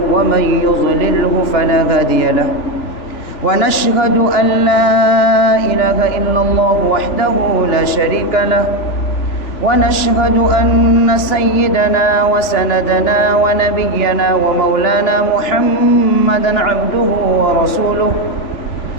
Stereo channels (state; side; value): late; right; 3.5 ms